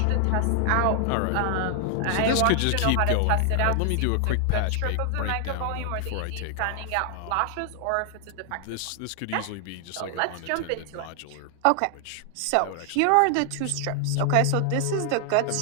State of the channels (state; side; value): different; both; correlation 0.00